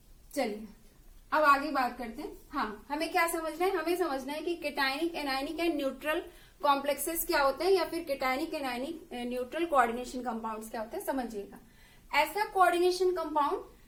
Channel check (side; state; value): both; identical; correlation 1.00